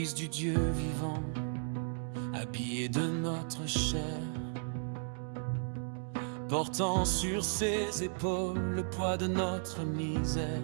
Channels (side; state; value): left; silent; digital silence